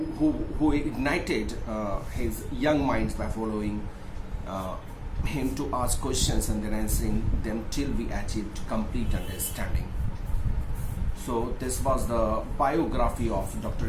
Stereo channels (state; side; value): identical; both; correlation 1.00